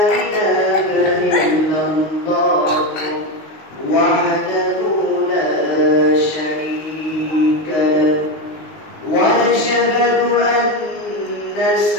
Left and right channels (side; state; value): right; late; 19 ms